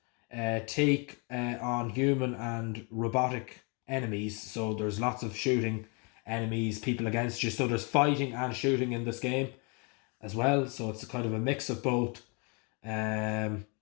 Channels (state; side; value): quieter; right; 33.8 dB